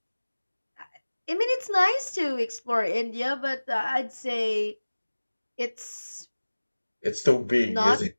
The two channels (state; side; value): inverted; both; correlation -1.00